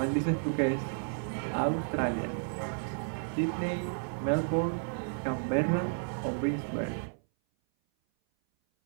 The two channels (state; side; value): silent; left; 56 dB below the other